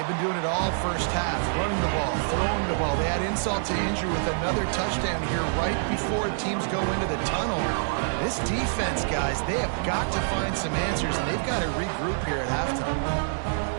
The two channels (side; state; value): left; silent; digital silence